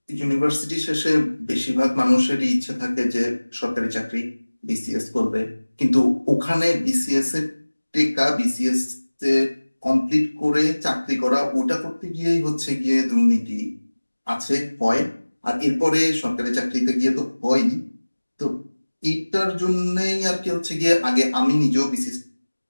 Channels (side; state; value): both; inverted; correlation -1.00